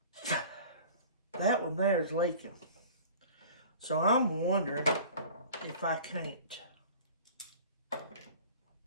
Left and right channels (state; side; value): inverted; both; correlation -0.44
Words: That one there is leaking. So I'm wondering if I can't